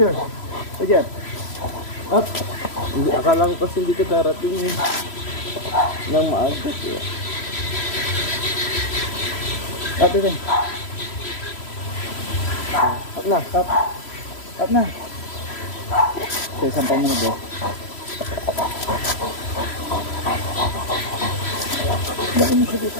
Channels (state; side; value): late; right; 3.0 ms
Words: Up! Hindi, akala ko kasi hindi ka darating ng maaga. Up din. Up na. Up na. Sige, sampang mo na, bro. Bakit mo siya